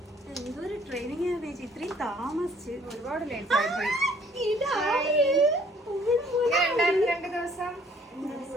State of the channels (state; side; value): normal; both; correlation 0.60